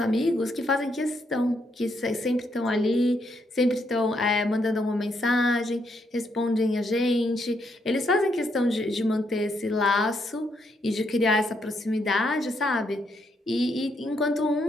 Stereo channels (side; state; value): both; normal; correlation 0.76